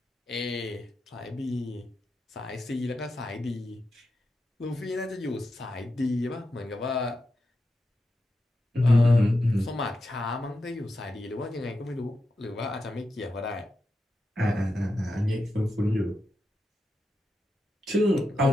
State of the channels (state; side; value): normal; both; correlation 0.88